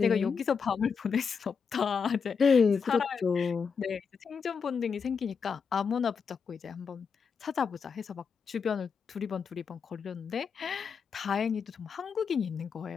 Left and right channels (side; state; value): right; quieter; 5.9 dB